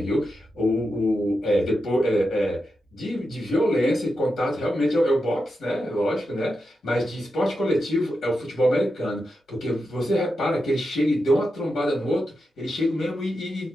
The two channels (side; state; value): both; normal; correlation 0.88